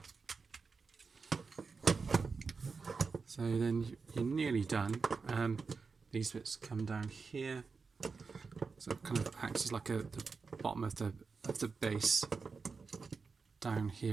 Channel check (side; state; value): left; quieter; 4.8 dB